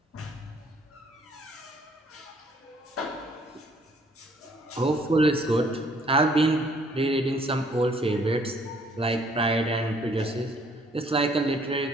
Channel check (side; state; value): both; normal; correlation 0.62